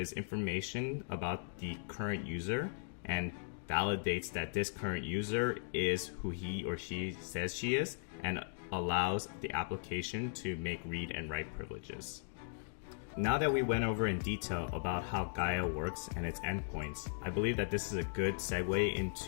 information about the current user and validates that this current user is who he or she says she is, and allows the application to make read and write privileges. Now that we went over in detail about how Gaia works and its endpoints, I believe that this is a good segue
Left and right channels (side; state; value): right; silent; digital silence